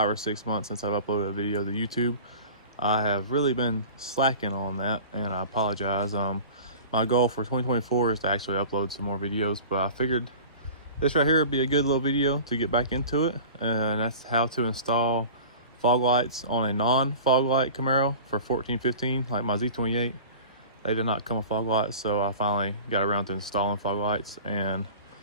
or 6 months since I've uploaded a video to YouTube. I have really been slacking on that, and I apologize. My goal for 2024 is to actually upload some more videos, but I figured this right here would be a good little video to get back into it, and that's how to install fog lights on a non-fog light Camaro for 14-15, like my Z28. They did not come with fog lights, so I finally got around to installing fog lights, and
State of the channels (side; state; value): both; inverted; correlation -0.39